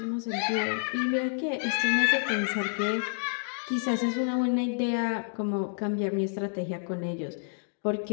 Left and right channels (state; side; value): silent; right; digital silence